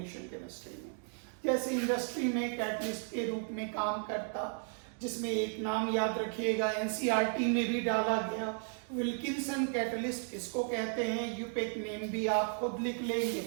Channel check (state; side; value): silent; left; 55 dB below the other